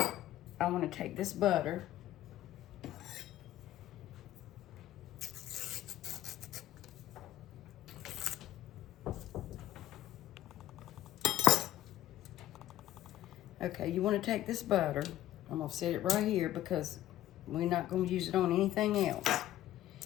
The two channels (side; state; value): right; quieter; 13.5 dB